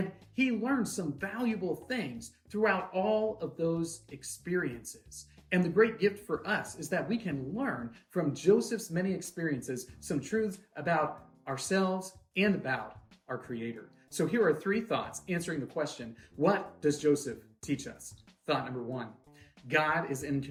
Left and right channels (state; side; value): identical; both; correlation 1.00